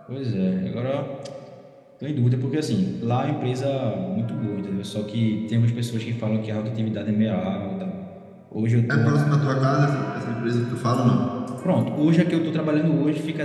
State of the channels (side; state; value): both; identical; correlation 1.00